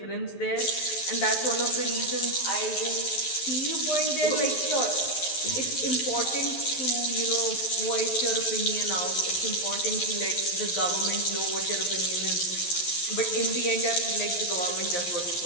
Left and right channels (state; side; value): late; right; 11 ms